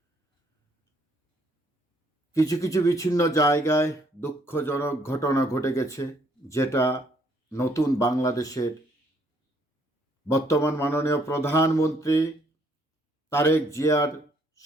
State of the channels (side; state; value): both; normal; correlation 0.67